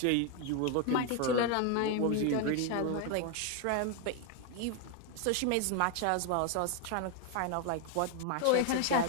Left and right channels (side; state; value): both; different; correlation 0.01